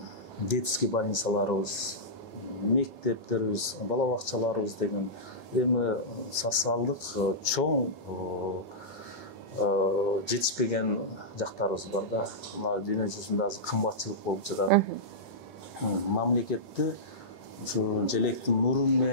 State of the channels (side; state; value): both; normal; correlation -0.14